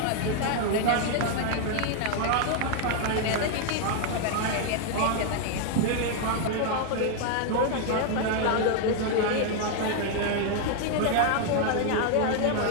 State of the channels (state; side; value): different; both; correlation 0.00